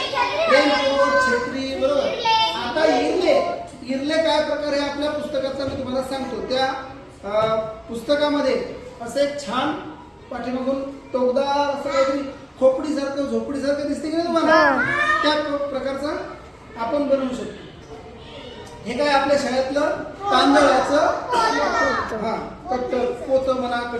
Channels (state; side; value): identical; both; correlation 1.00